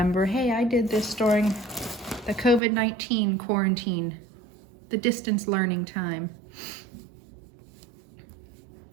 hey, I did this during the COVID-19 quarantine, the distance learning time.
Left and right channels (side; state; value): left; drops out; at 2.6 s